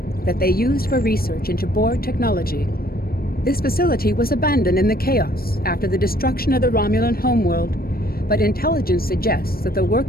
that they used for research into Borg technology. This facility was abandoned in the chaos after the destruction of the Romulan homeworld, but intelligence suggests that the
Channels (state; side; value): late; right; 0.44 ms